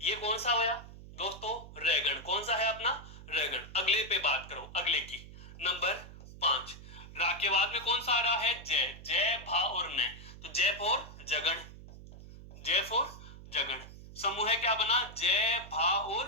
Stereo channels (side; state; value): right; noise; hum, 16 dB below the sound